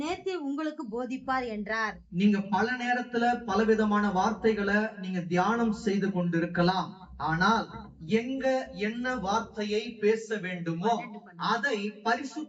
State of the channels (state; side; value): identical; both; correlation 1.00